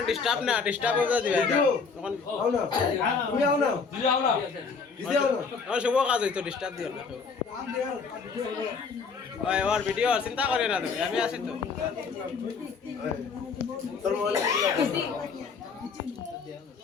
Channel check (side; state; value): right; quieter; 5.2 dB